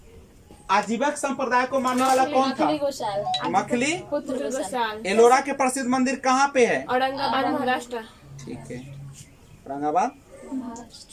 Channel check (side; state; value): both; identical; correlation 1.00